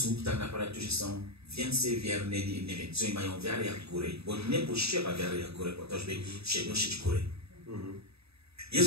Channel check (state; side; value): late; left; 0.78 ms